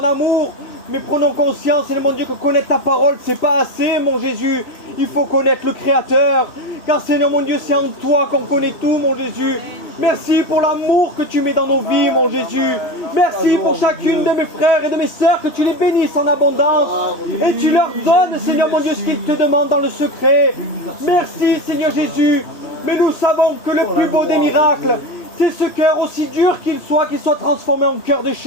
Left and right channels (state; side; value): late; right; 3.0 ms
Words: mais prenons conscience, Seigneur mon Dieu, que connaître ta parole, c'est pas assez, mon Jésus. Il faut connaître le Créateur, car Seigneur mon Dieu, c'est en toi qu'on connaît tout, mon Jésus. Merci pour l'amour que tu mets dans nos vies, mon Jésus. Merci pour chacune de mes frères et de mes sœurs, que tu les bénisses en abondance, et tu leur donnes, Seigneur mon Dieu, ce qu'ils te demandent dans le secret. Merci, Seigneur Jésus, mais nous savons que le plus beau des miracles, c'est ce cœur aussi dur qu'il soit transformé en cœur de